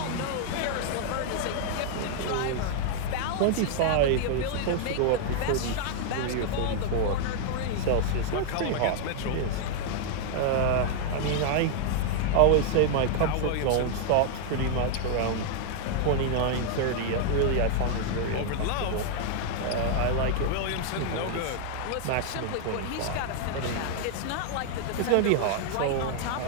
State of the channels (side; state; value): both; different; correlation 0.00